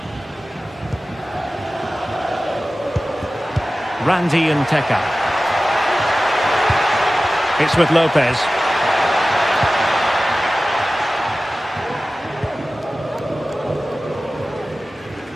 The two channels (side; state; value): both; normal; correlation 0.96